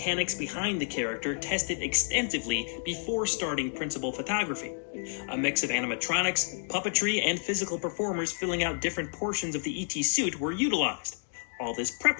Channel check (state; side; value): silent; right; digital silence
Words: behind the character tested extensively before starting principal photography. A mix of animatronics, puppetry, and physical performers filling out different portions of the E.T. suit were utilized. All this